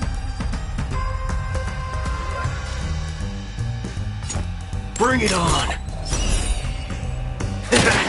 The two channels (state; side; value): identical; both; correlation 1.00